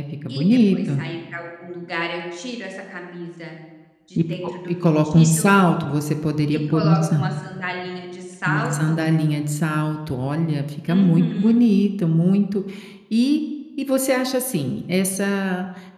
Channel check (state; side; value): identical; both; correlation 1.00